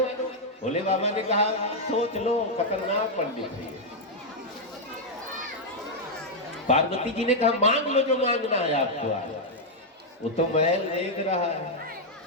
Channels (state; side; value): normal; both; correlation -0.02